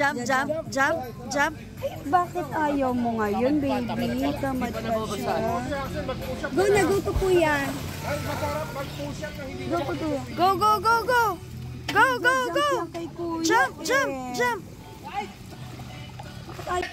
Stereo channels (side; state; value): both; identical; correlation 1.00